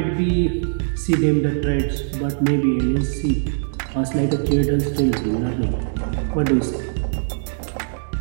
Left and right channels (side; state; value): left; silent; digital silence